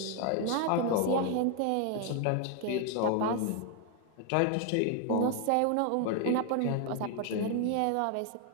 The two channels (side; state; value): both; different; correlation 0.00